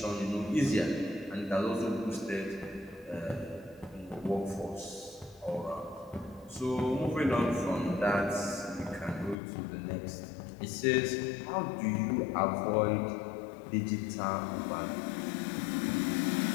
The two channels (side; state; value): right; drops out; at 9.3 s